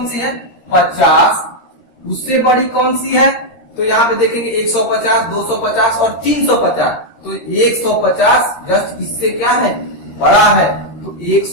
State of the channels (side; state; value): right; late; 13 ms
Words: सी है, 50, उससे बड़ी कौन सी है? तो यहाँ पे देखेंगे 150, 250 और 350। तो 150 जस्ट इससे क्या है? बड़ा है, तो